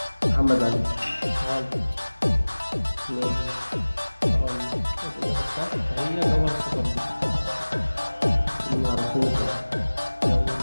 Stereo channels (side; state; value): both; inverted; correlation -1.00